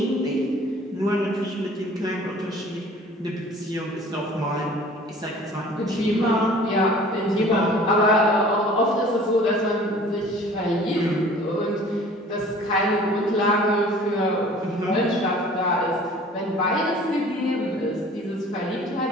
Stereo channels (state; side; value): normal; both; correlation 0.48